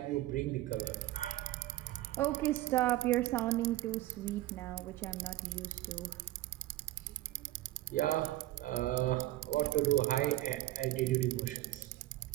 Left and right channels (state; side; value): quieter; left; 16.3 dB